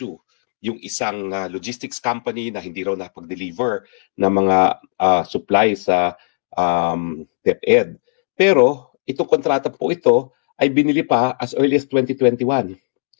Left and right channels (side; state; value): right; silent; digital silence